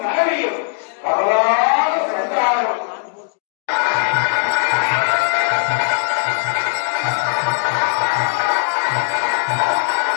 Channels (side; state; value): right; silent; 66 dB below the other